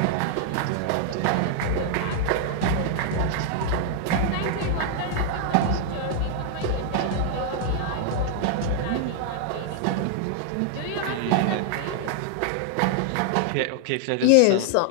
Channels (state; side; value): different; both; correlation 0.00